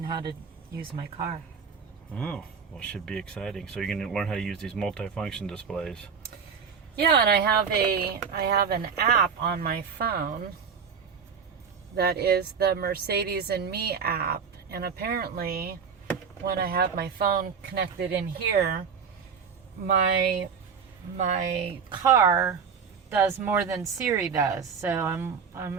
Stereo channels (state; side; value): quieter; left; 6.4 dB